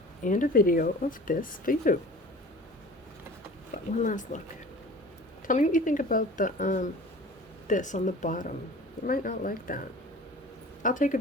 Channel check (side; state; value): both; normal; correlation 0.42